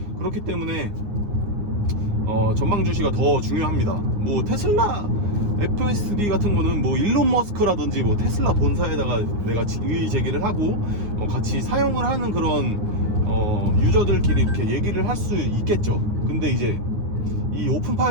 그렇기 때문에 전방 주시가 더 중요합니다. 뭐 테슬라 FSD 같은 거는 뭐 일론 머스크라든지 뭐 테슬라 본사에다가 내가 이의 제기를 하고 같이 사용을 하는 그런 유저들끼리 이렇게 얘기를 할 수 있겠죠. 근데 이제 이 오픈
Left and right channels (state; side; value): late; left; 9.7 ms